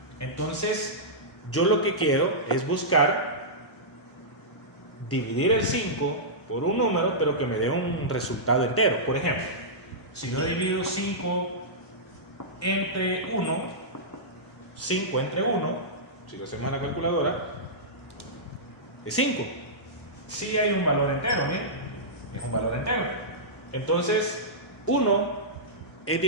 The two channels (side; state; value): both; normal; correlation -0.14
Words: Entonces, yo lo que quiero es buscar dividir el 5 por un número, pero que me dé un resultado entero. Por ejemplo, si yo divido 5 entre 1, 5 entre 1, si lo hacemos en la calculadora, es 5. Sí hay un valor entero, ¿bien? Es un valor entero. Entonces, 1 es